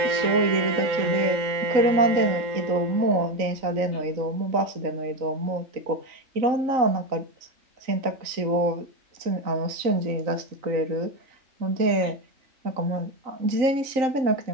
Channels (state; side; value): late; left; 3.9 ms